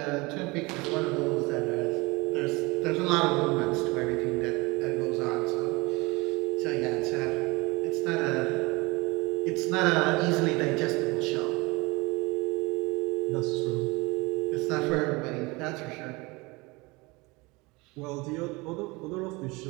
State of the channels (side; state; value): left; quieter; 24.7 dB